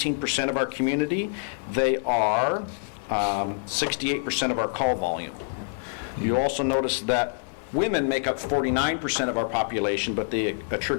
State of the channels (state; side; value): silent; right; digital silence